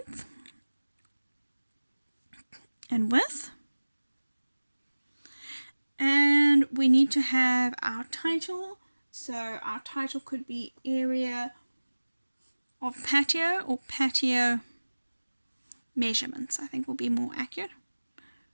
and width. And we need to have our title. So our title could be area of patio or patio measurements, I think will be more accurate.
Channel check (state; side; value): inverted; both; correlation -1.00